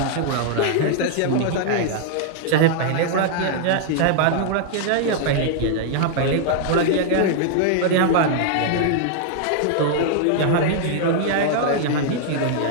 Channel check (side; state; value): both; different; correlation -0.01